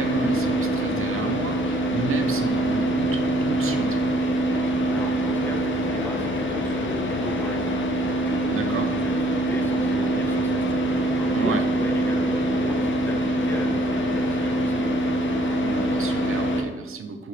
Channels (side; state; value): both; normal; correlation 0.63